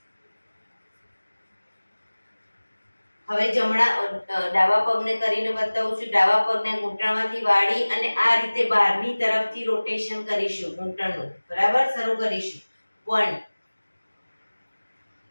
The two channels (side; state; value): both; inverted; correlation -1.00